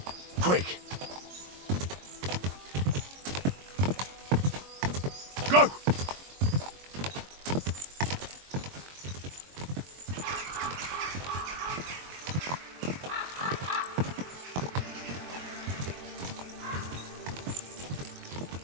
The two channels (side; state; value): left; late; 22 ms